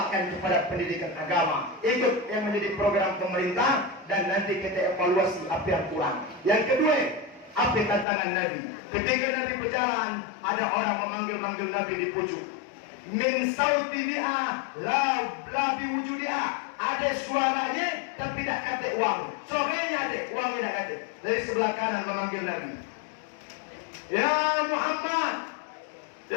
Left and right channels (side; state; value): right; drops out; at 8.1 s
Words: kepada pendidikan agama. Ikut yang menjadi program pemerintah dan nanti kita evaluasi apa yang kurang. Yang kedua, apa tantangan Nabi? Ketika Nabi berjalan, ada orang memanggil-manggil Nabi di pucuk. Min sauti biha la biwujudiha. Ada suaranya tapi tak kata uang. Sorenya ada, uangnya tak kata. Dari sebelah kanan memanggil Nabi. Ya Muhammad.